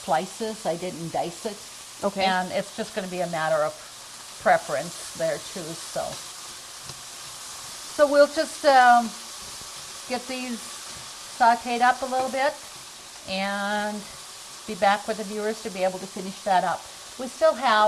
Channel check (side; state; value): both; identical; correlation 1.00